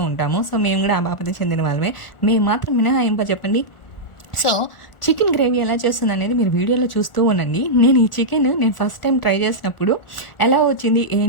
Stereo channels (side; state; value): right; late; 1.4 ms